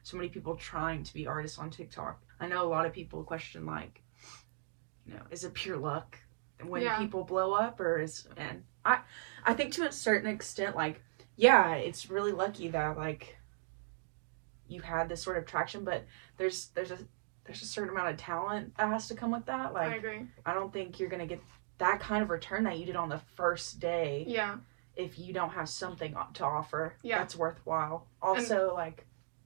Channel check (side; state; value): left; silent; digital silence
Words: so many people trying to be artists on TikTok, I know a lot of people question, like, you know, is it pure luck when people blow up, or and I think to a certain extent, like, yeah, it's really lucky that like you had this sort of traction, but there's a certain amount of talent that has to come with that. Like, I agree. I don't think you're gonna get that kind of return that you did on the first day. Yeah. If you don't have something to offer that's worthwhile. Also, like,